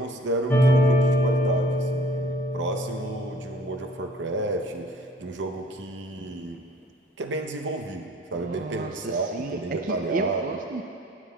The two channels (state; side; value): normal; both; correlation 0.54